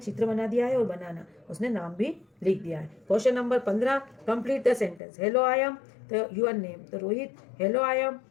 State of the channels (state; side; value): drops out; right; at 5.0 s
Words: बना दिया है और बनाना उसने नाम भी लिख दिया है। Question number 15, complete the sentence, hello I M, तो यूर नेम, तो Rohit, hello I M